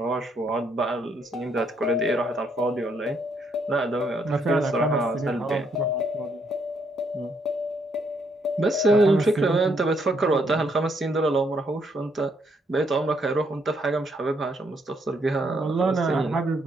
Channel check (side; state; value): both; normal; correlation 0.73